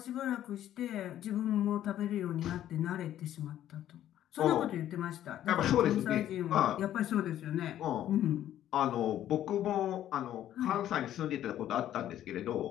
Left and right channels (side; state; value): right; quieter; 11.9 dB